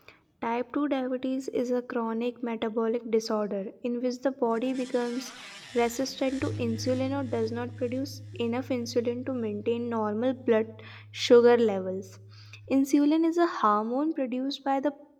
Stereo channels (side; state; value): both; identical; correlation 1.00